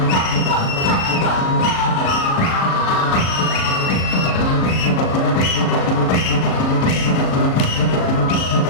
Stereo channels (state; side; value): late; right; 38 ms